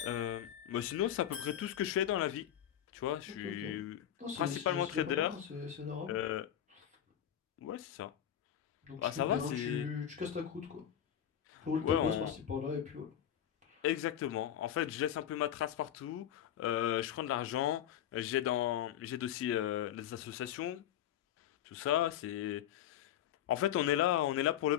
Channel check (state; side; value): quieter; right; 10.5 dB